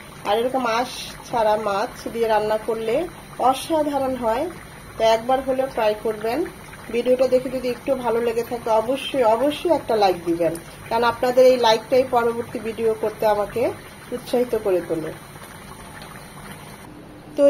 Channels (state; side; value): identical; both; correlation 1.00